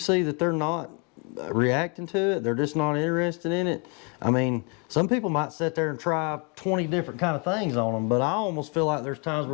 that they're not reacting to it, they're just not interested in it. I mean, some people might sit there and try 20 different kind of things on them, but I almost feel like there's times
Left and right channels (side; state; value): right; quieter; 33.9 dB